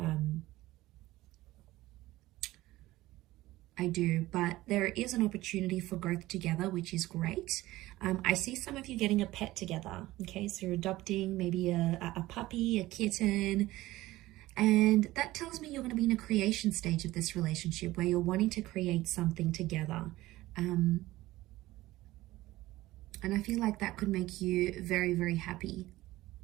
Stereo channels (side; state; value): left; quieter; 17.4 dB